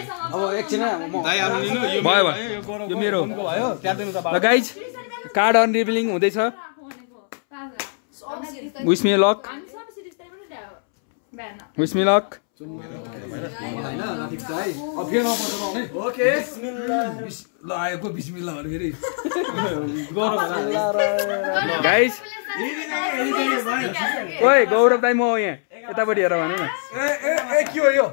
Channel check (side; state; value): right; silent; 64 dB below the other